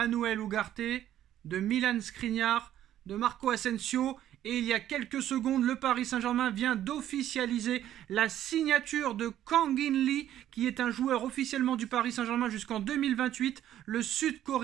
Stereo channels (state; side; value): quieter; left; 11.9 dB